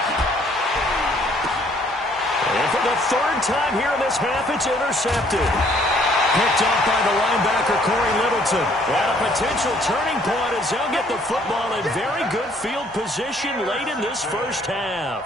And for the 3rd time here in this half, it's intercepted. Picked up by the linebacker, Corey Littleton. And a potential turning point as they'll get the football in very good field position late in this first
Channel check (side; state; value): both; normal; correlation 0.62